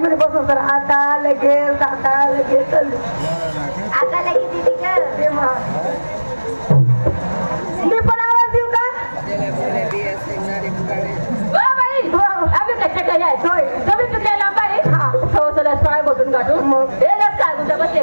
बसून तर आता लगेच चालते आता लगेच मी पण आवाज देऊ का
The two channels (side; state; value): both; inverted; correlation -1.00